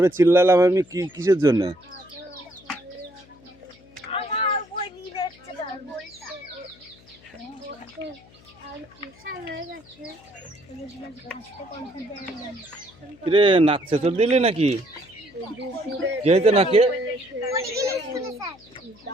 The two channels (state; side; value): noise; left; hum, 26 dB below the sound